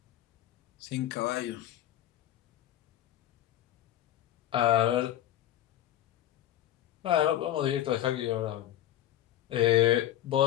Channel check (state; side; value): quieter; right; 12.8 dB